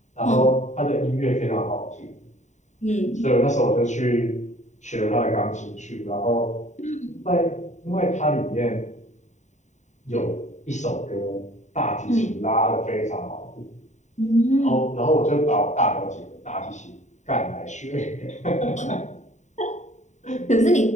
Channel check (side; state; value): right; late; 0.34 ms